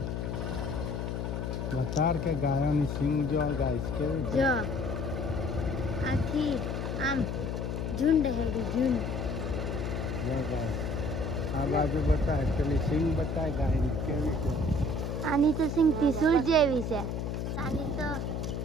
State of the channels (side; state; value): left; noise; hum, 3 dB below the sound